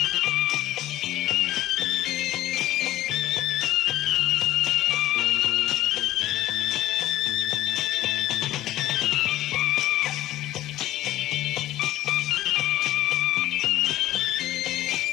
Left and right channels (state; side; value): quieter; right; 14.6 dB